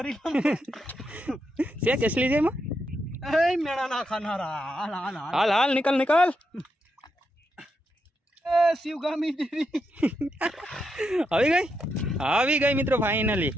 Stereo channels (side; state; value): both; normal; correlation 0.83